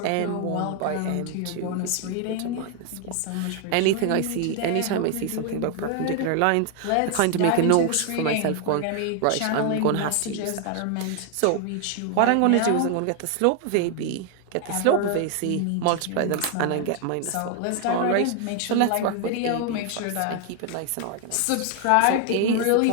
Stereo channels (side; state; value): both; different; correlation 0.00